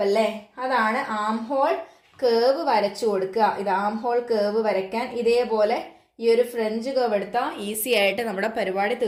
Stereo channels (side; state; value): both; identical; correlation 1.00